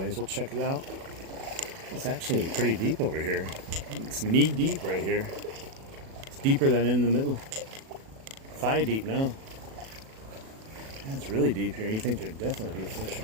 We'll check it out. It's actually pretty deep over here. It's knee deep right here. It's deeper than in the middle. Thigh deep now. Yeah, it's really deep here. You think there'd definitely be a fish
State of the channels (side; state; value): left; late; 37 ms